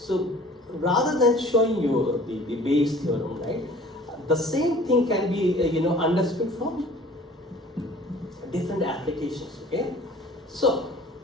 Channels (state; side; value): normal; both; correlation 0.48